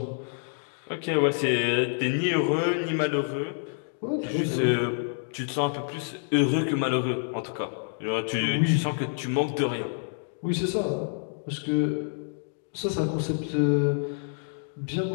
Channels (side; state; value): right; silent; digital silence